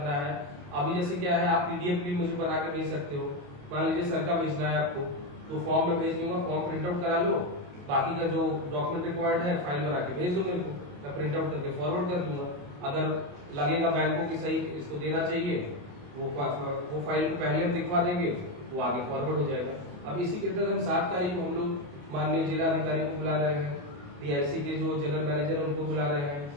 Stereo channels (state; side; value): late; left; 28 ms